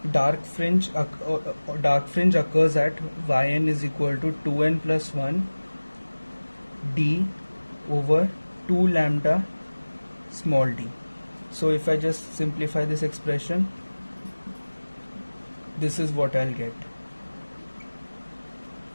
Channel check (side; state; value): both; inverted; correlation -1.00